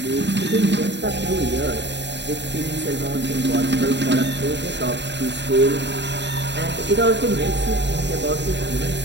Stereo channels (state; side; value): late; left; 0.51 ms